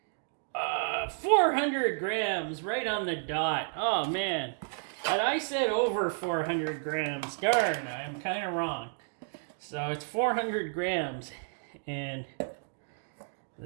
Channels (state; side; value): silent; left; digital silence